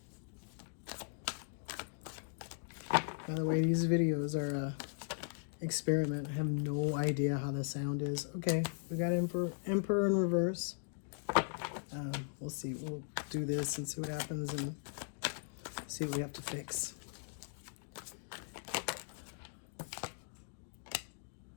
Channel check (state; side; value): silent; right; digital silence